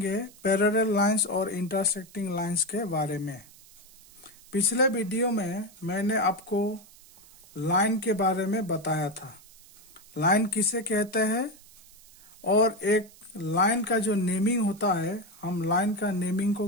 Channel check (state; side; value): noise; right; hiss, 23 dB below the sound